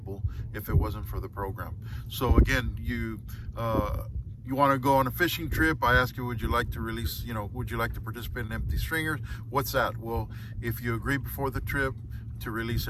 if it wasn't for the program. So again, you want to go on a fishing trip, I ask you, would you like to release, would you like to participate in Empty Stringers? What's that? Well, if you agree before the trip to release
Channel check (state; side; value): identical; both; correlation 1.00